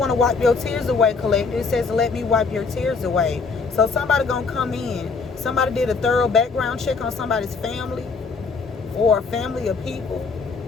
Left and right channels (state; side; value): quieter; right; 4.7 dB